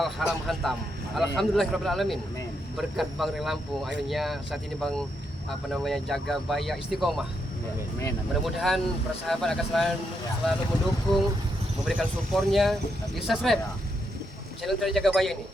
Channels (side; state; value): both; normal; correlation 0.80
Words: haram hantam. Alhamdulillahirabbil alamin. Amin. Berkat Bang Re Lampung, akhirnya saat ini Bang Jaga Baya istiqomah. Amin. Mudah-mudahan para sahabat akan selalu mendukung, memberikan supportnya, di subscribe channel dari Jaga Baya ini.